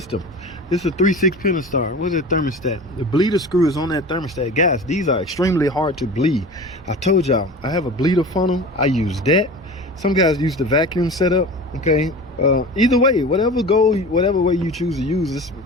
This is a 3/6 Pentastar. What's that thermostat? The bleeder screw is on that thermostat. Guys, these are extremely hard to bleed. I told y'all, I have a bleeder funnel. I use that. Some guys use the vacuum setup. Okay. Either way, whatever way you choose to use this,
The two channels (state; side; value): normal; both; correlation 0.35